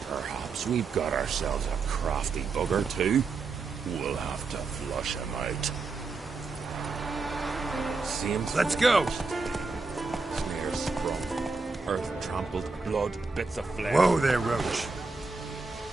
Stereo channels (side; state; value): left; quieter; 4.1 dB